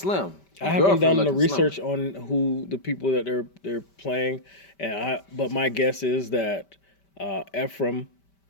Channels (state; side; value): late; right; 5.1 ms